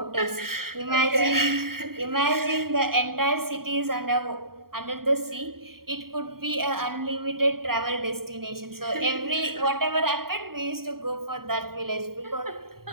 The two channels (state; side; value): late; left; 0.93 ms